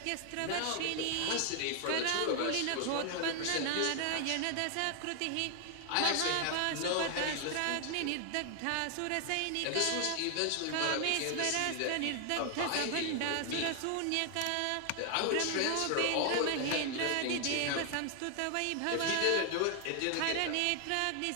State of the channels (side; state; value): both; different; correlation 0.00